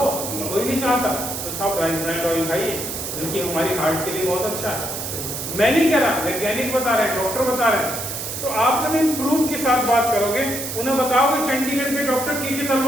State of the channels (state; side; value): noise; right; hiss, 5 dB below the sound